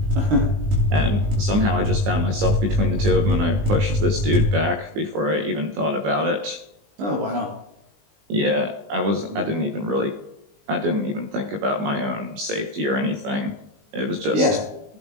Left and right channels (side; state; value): left; late; 19 ms